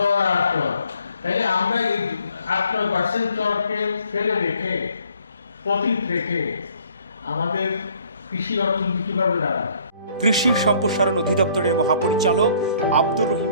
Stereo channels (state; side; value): inverted; both; correlation -0.60